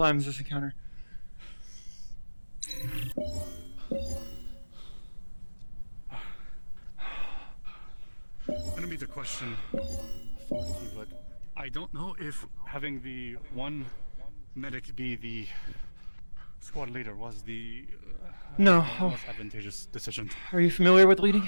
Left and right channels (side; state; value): both; inverted; correlation -1.00